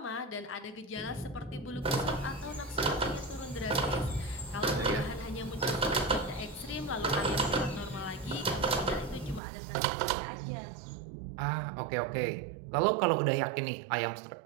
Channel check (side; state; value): left; drops out; at 9.4 s